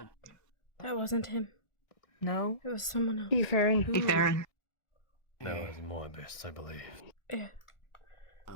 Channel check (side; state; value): right; late; 1.4 ms